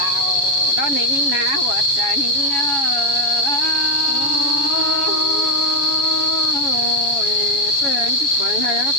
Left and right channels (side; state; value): right; late; 7.1 ms